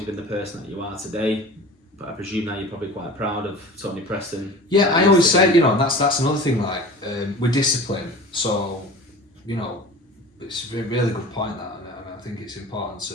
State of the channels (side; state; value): both; normal; correlation 0.38